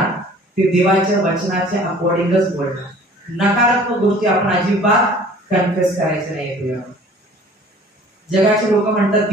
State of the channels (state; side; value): normal; both; correlation 0.50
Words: ते देवाच्या वचनाच्या अकॉर्डिंगच बोलणार. नकारात्मक गोष्टी आपण अजिबात कन्फेस करायच्या नाही प्रिया. जगाचे लोक म्हणतात